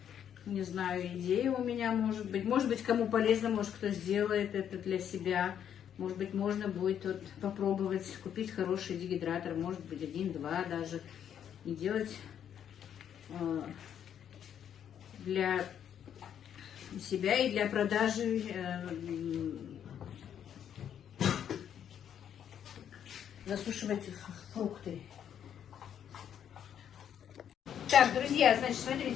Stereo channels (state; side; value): quieter; right; 9.2 dB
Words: не знаю, идея у меня может быть. Может быть, кому полезно, может, кто сделает это для себя. Может быть, можно будет вот попробовать купить хороший дегидратор, может быть, 1-2 даже. И делать для себя и для продажи засушивать фрукты. Так, друзья, значит,